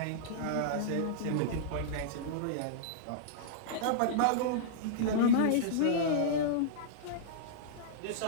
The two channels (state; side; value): different; both; correlation -0.02